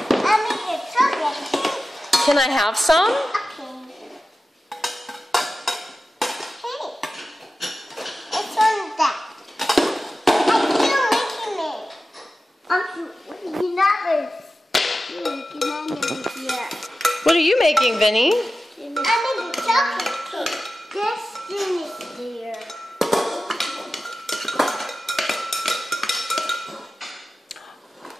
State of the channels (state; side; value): normal; both; correlation 0.94